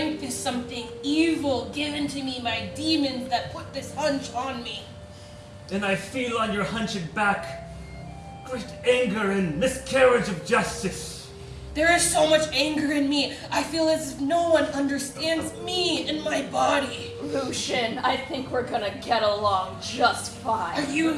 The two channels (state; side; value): identical; both; correlation 1.00